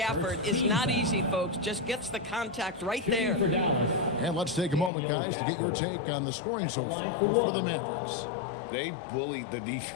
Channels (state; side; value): drops out; right; at 4.9 s